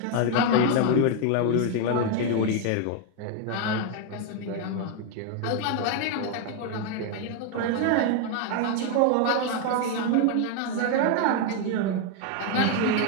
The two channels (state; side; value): different; both; correlation 0.01